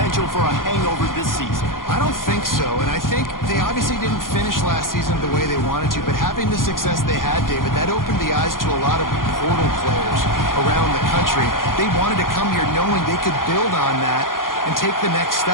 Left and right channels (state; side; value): late; right; 0.90 ms